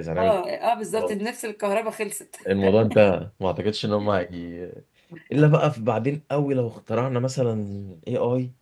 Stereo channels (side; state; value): both; identical; correlation 1.00